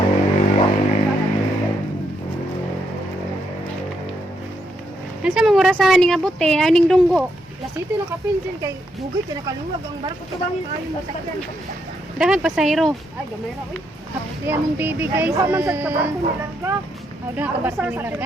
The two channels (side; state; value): both; normal; correlation 0.78